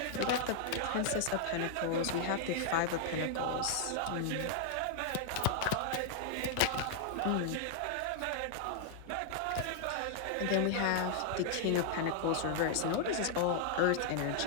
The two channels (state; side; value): different; both; correlation -0.01